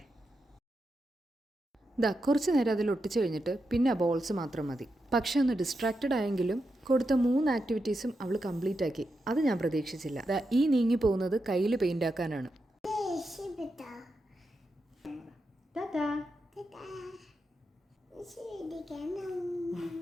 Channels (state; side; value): normal; both; correlation 0.87